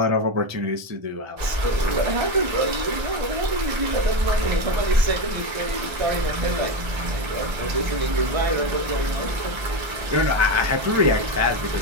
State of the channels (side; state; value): left; late; 1.3 ms